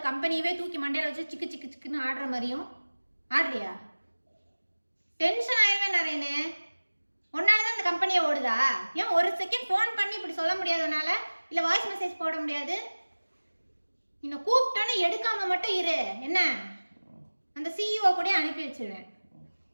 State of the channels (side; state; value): both; inverted; correlation -1.00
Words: கம்பெனியவே தூக்கி மண்டையில வச்சு சிக்கு சிக்கு சிக்குன்னு ஆடுற மாதிரியும் ஆடுறியா? டென்ஷன் ஆயிடுவேன் நரேனு. உன்னாலதான் இந்த கம்பெனியை ஓடுதா? ஏன் ஒரு செகண்ட் ஃபோன் பண்ணி இப்படி சொல்ல முடியாதனால? இல்ல வாய்ஸ் மெசேஜ் போட முடியாது? இன்னும் கூப்பிட்டோன்னு எடுக்காம மட்டும் இரு. என்ன அந்த சிஇஓ கூட அனுப்பி வச்சிருவேன்.